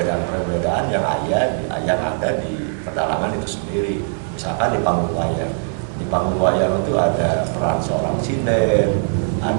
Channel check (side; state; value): left; silent; 66 dB below the other